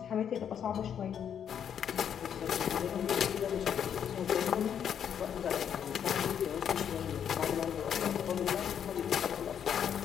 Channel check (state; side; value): quieter; right; 8.5 dB